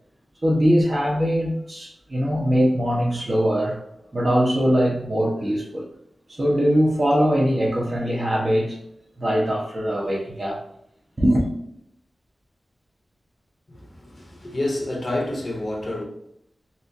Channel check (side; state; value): both; normal; correlation 0.95